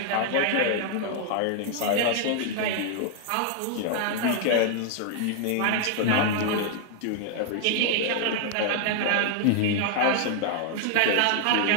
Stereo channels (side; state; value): both; different; correlation 0.00